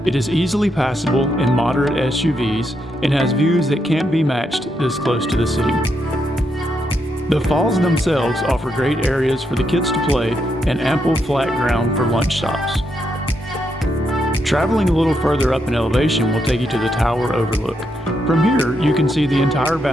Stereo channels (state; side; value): normal; both; correlation 0.80